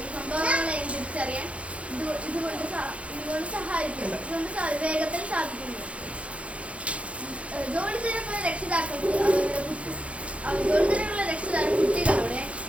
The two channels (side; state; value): left; late; 0.063 ms